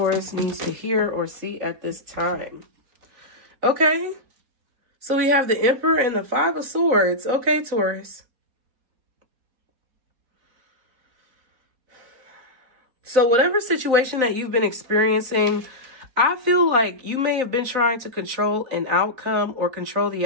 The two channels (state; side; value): late; left; 3.9 ms